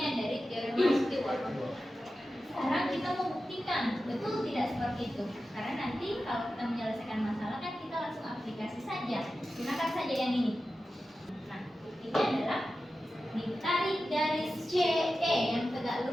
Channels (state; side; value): normal; both; correlation 0.93